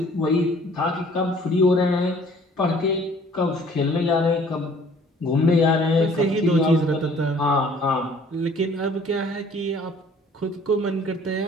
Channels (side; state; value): both; normal; correlation 0.55